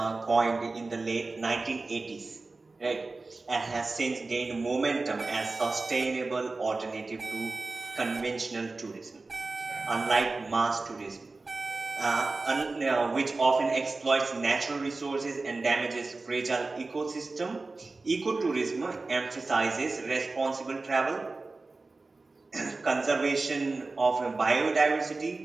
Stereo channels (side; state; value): left; quieter; 3.6 dB